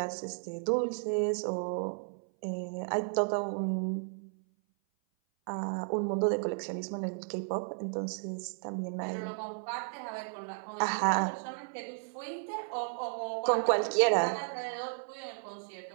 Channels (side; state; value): left; silent; 55 dB below the other